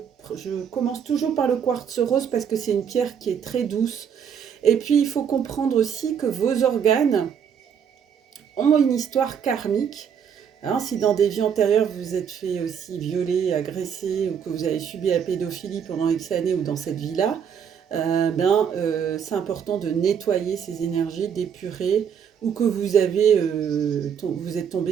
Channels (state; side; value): quieter; left; 7.7 dB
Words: commence toujours par le quartz rose parce que c'est une pierre qui est très douce. Et puis, il faut comprendre aussi que vos organes ont une histoire karmique. Hein, si dans des vies antérieures, vous vous êtes fait aussi violer, agresser, ou que vous avez subi la pédophilie pendant X années ou dans cette vie-là, c'est important de nettoyer ces énergies, d'épurer, ou que vous êtes